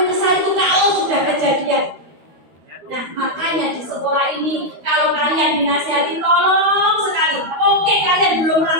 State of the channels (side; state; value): left; late; 13 ms